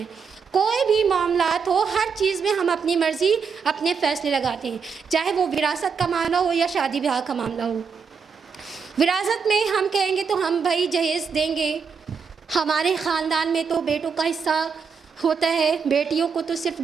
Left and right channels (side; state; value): left; quieter; 5.8 dB